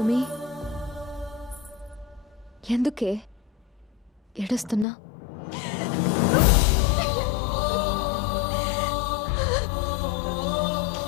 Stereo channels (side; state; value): right; drops out; at 4.9 s